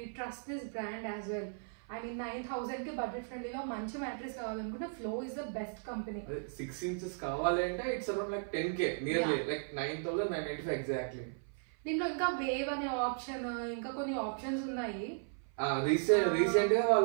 trust this brand as well. I mean 9,000 కి budget ఫ్రెండ్లీలో మంచి mattress కావాలనుకుంటే flow is the best company. 6 inches కావాలి అంటే it's around like 10k nearly like 9,995 exactly. దీంట్లో ఇంకా వేవ్ అనే ఆప్షన్, ఇంకా కొన్ని ఆప్షన్స్ ఉన్నాయి. రీసెంట్ గా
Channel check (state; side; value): silent; left; 54 dB below the other